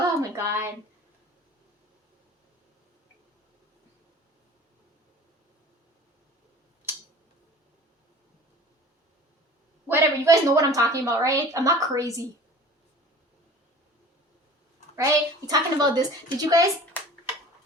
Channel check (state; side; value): normal; both; correlation 0.43